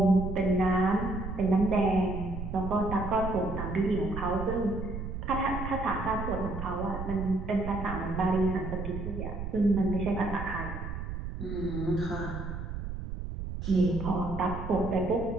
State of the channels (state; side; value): noise; right; rumble, 6 dB below the sound